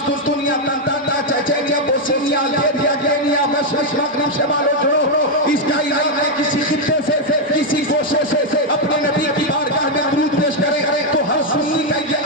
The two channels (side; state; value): both; normal; correlation 0.01